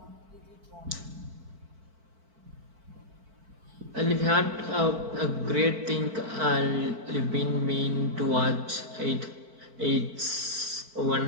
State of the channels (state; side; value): late; left; 4.5 ms